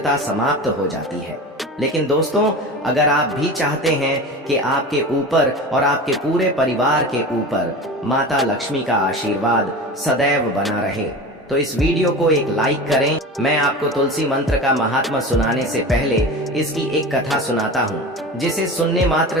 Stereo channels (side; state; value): both; normal; correlation 0.31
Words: समाप्त हो जाती है। लेकिन दोस्तों, अगर आप भी चाहते हैं कि आपके ऊपर और आपके पूरे परिवार के ऊपर माता लक्ष्मी का आशीर्वाद सदैव बना रहे, तो इस वीडियो को एक लाइक करें। मैं आपको तुलसी मंत्र का महात्मा सुनाने से पहले इसकी एक कथा सुनाता हूँ, जिसे सुनने